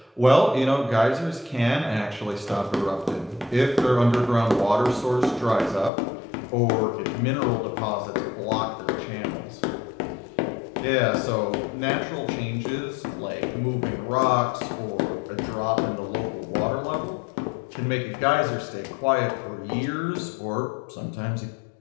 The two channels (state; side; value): drops out; right; at 5.9 s